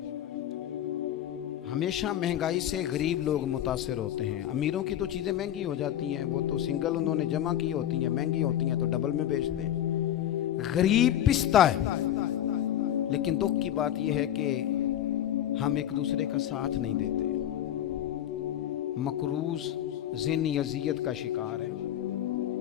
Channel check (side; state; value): right; quieter; 11.4 dB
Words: हमेशा महंगाई से गरीब लोग मुतासिर होते हैं। अमीरों की तो चीज़ें महंगी हो जाती हैं, वो तो सिंगल उन्होंने जमा की होती हैं, महंगी होती हैं तो डबल में बेचते हैं। गरीब पिसता है। लेकिन दुख की बात यह है कि हम एक दूसरे का साथ नहीं देते। मकरूज ज़हनी अज़ियत का शिकार है।